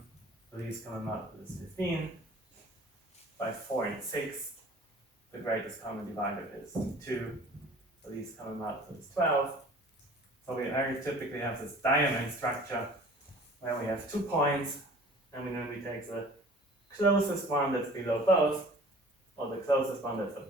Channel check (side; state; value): both; normal; correlation 0.47